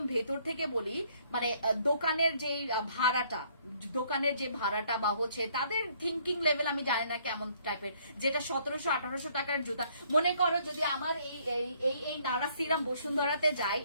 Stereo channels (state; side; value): inverted; both; correlation -0.64